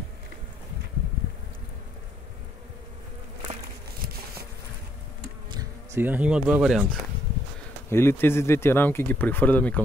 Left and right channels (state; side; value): normal; both; correlation 0.72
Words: Сега има два варианта. Или тези двете рамки ги прехвърляме